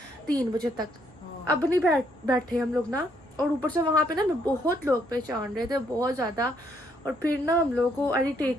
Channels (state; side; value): noise; right; hum, 29 dB below the sound